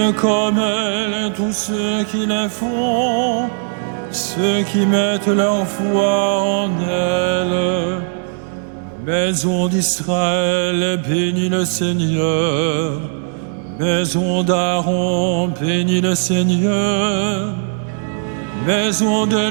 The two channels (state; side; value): silent; left; digital silence